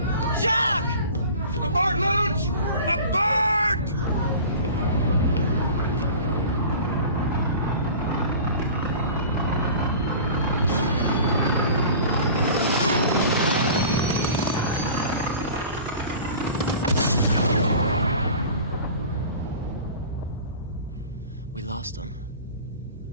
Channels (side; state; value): both; inverted; correlation -0.40